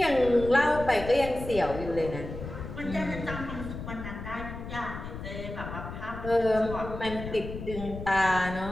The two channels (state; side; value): noise; left; rumble, 9 dB below the sound